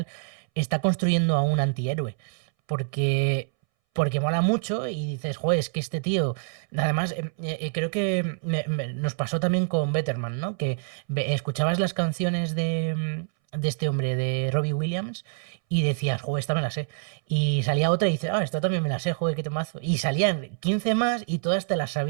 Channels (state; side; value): silent; left; 61 dB below the other